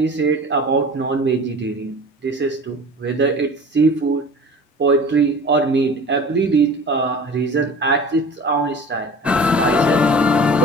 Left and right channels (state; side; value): normal; both; correlation 0.40